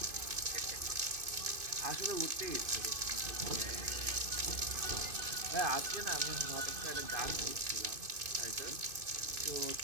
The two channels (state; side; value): late; left; 2.5 ms